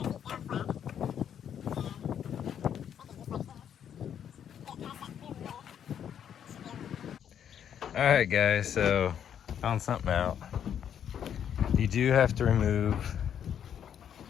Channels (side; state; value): right; quieter; 9.0 dB